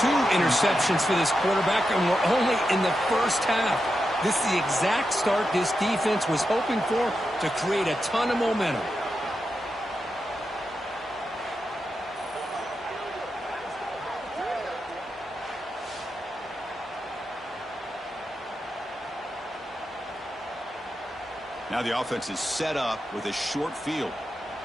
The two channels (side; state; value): both; normal; correlation 0.88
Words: interceptions for this quarterback, and we're only in the first half. This is the exact start this defense was hoping for to create a ton of momentum. Now the offense is set up with a short field.